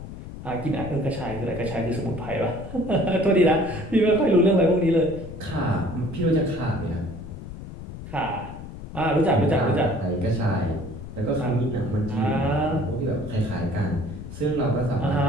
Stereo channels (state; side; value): noise; left; rumble, 11 dB below the sound